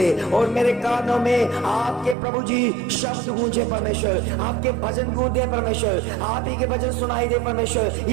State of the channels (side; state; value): left; drops out; at 2.1 s